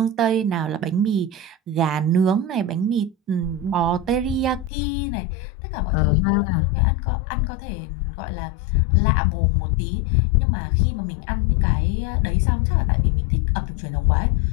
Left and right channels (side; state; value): right; drops out; at 4.7 s